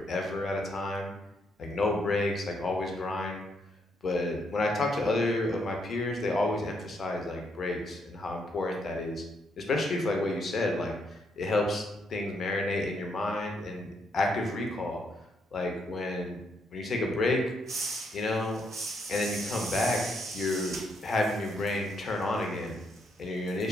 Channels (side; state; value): both; normal; correlation 0.75